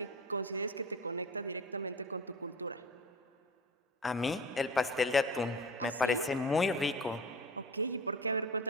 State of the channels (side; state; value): both; normal; correlation 0.35